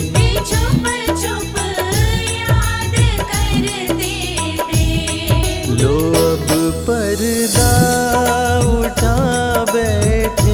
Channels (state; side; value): identical; both; correlation 1.00